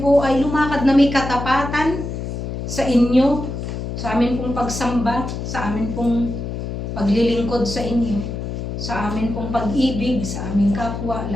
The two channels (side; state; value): left; noise; hum, 5 dB below the sound